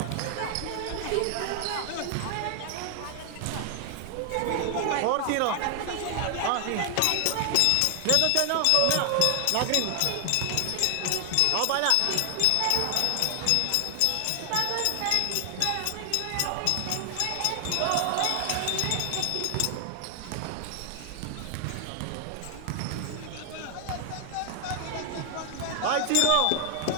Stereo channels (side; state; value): both; different; correlation 0.00